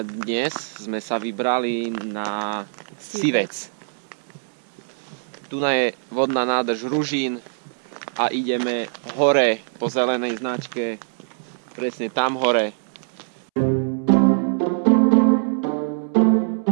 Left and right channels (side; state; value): left; silent; 64 dB below the other